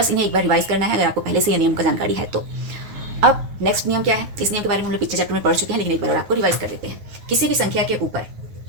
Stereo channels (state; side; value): late; left; 9.4 ms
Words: इन्हें एक बार रिवाइज करना है अगर आपको पहले से ये नियम का जानकारी है तो। अब नेक्स्ट नियम क्या है? इस नियम के बारे में हम लोग पिछले चैप्टर में पढ़ चुके हैं, लेकिन एक बार और आपको रिवाइज कर देते हैं। किसी भी संख्या के ऊपर